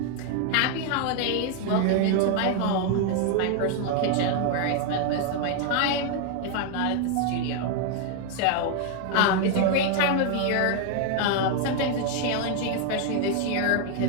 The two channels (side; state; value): both; different; correlation 0.00